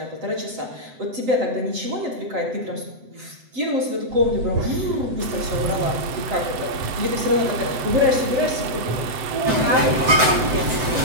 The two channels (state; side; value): late; left; 7.9 ms